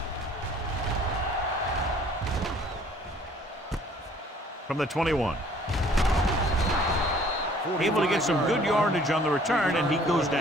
From the 21. Able to get some good yardage on the return, and he goes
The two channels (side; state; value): both; normal; correlation 0.56